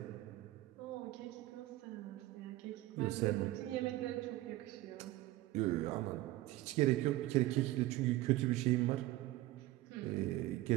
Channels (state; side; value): quieter; left; 17.1 dB